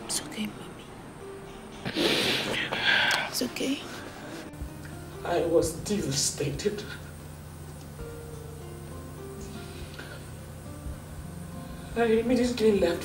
It's okay, Mommy. It's okay. I was devastated. I immediately left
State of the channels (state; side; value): identical; both; correlation 1.00